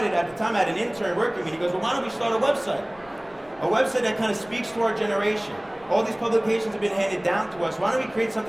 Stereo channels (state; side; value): noise; left; rumble, 26 dB below the sound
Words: at the time I had an intern working with me. He goes, well, why don't we start a website? A website that kind of speaks to our generation. All these publications have been handed down to us. Why don't we create